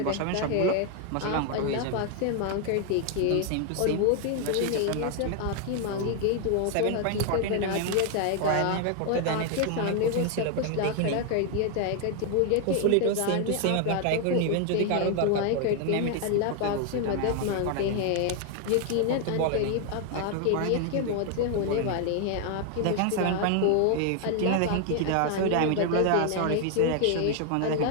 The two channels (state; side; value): different; both; correlation 0.00